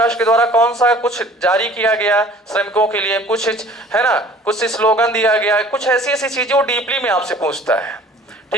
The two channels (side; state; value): both; normal; correlation 0.49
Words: के द्वारा कौन सा कुछ जारी किया गया श्रमिकों के लिए, कुछ है ना, कुछ स्लोगन दिया गया, कुछ ऐसी ऐसी चीजें वो डीपली में आपसे पूछता है,